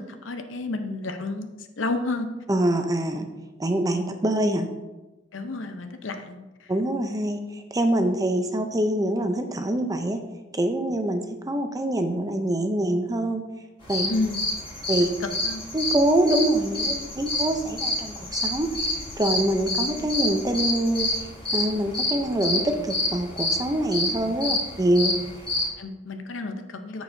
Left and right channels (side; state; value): both; normal; correlation 0.58